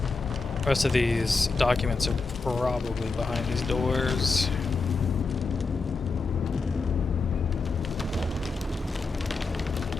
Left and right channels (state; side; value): quieter; right; 4.1 dB